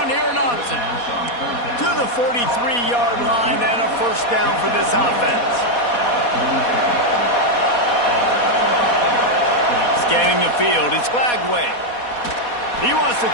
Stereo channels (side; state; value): right; late; 4.2 ms